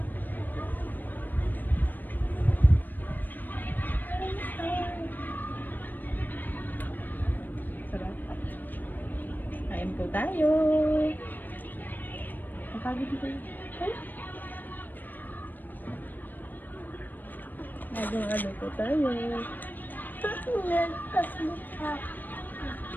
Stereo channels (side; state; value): right; late; 0.089 ms